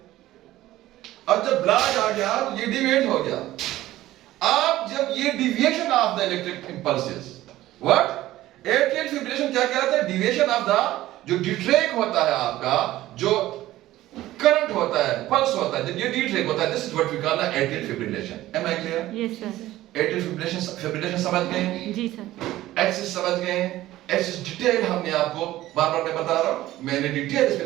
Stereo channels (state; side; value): quieter; left; 15.4 dB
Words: अब जब ब्लॉक आ गया तो ये डिविएट हो गया. आप जब ये deviation of the electric impulses, what atrial fibrillation क्या कहता है, डिविएशन ऑफ द जो डिट्रैक होता है आपका, जो करंट होता है, पल्स होता है, जब ये डिट्रैक होता है, this is what we call the atrial fibrillation. Am I clear? Yes sir. Atrial fibrillation समझ गए, जी सर. एक्सिस समझ गए. एक्सिस डिटेल हमने आपको बार बार मैं बता रहा हूं, मैंने डिटेल इस पे